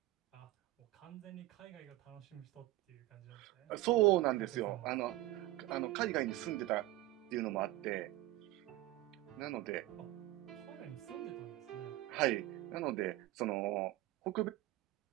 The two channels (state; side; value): quieter; left; 17.4 dB